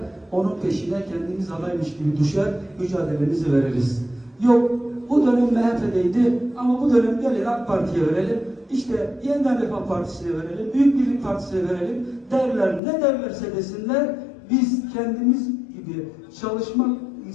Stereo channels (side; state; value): right; drops out; at 12.8 s